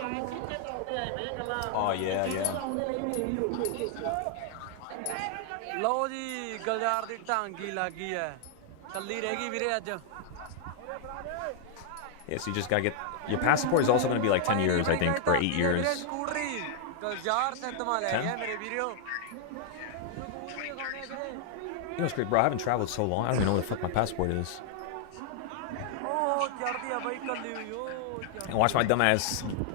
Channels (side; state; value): both; different; correlation 0.00